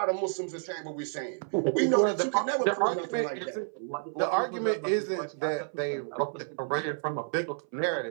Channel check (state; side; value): silent; left; 58 dB below the other